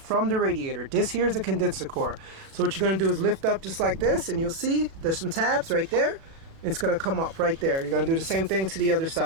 the radiator. This here is a condenser core. So what you're going to do is lift up just like this, and you'll see there's some tabs right there. It's going to come up right there. You're going to do the same thing to the other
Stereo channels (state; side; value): late; left; 36 ms